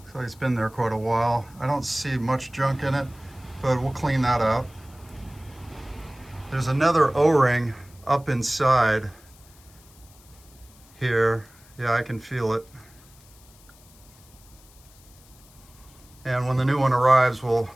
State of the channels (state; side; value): noise; left; hiss, 26 dB below the sound